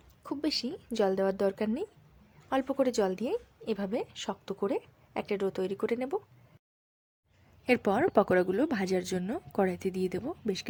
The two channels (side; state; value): both; identical; correlation 1.00